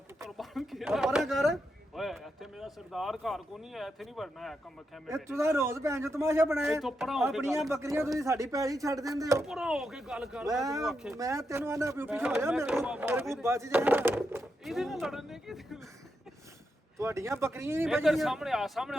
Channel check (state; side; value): normal; both; correlation 0.85